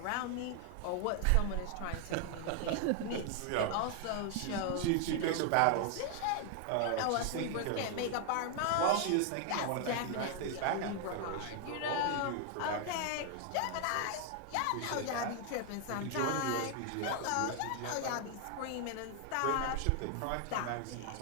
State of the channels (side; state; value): both; different; correlation 0.00